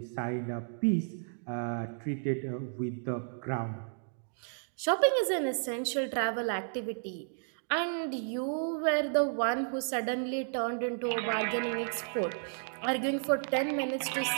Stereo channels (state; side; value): silent; left; digital silence